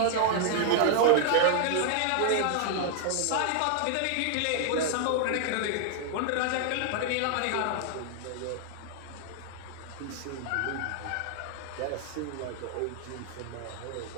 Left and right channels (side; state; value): both; different; correlation 0.00